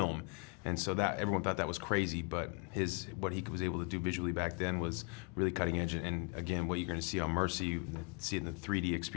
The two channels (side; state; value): right; quieter; 32.8 dB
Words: And so that everyone thought that was crazy, but what he was able to do visually back then was really cutting edge. And again, what you're going to see on Mercy, see it in the 3D